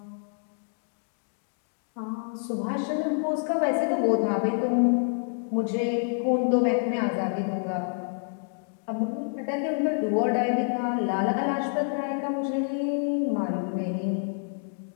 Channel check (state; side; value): silent; right; digital silence